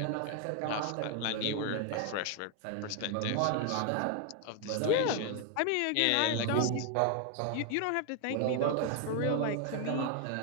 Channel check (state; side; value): different; both; correlation 0.01